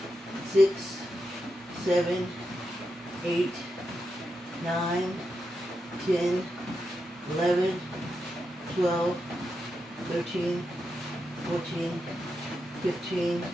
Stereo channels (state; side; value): normal; both; correlation 0.86